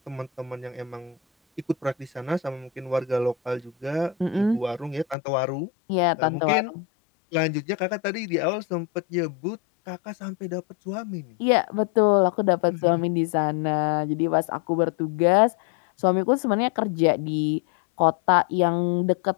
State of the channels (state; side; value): drops out; right; at 5.2 s